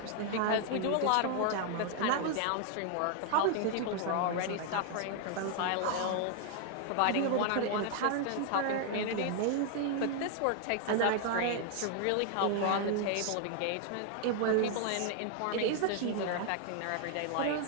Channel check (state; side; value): different; both; correlation 0.00